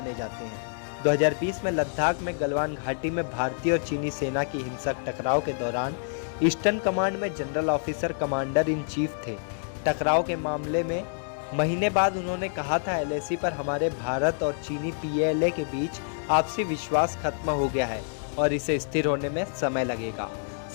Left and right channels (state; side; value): silent; right; digital silence